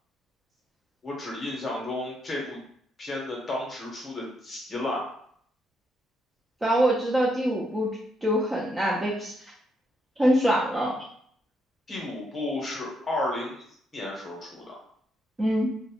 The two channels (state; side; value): normal; both; correlation 0.78